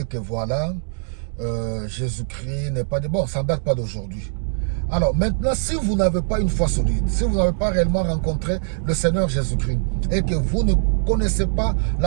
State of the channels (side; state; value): left; silent; digital silence